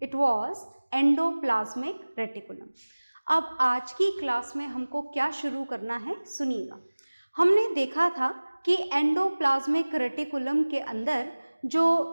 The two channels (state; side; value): inverted; both; correlation -1.00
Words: It was endoplasmic reticulum. अब आज की क्लास में हमको क्या शुरू करना है, सुनिएगा। हमने देखा था कि एंडोप्लाज्मिक रेटिकुलम के अंदर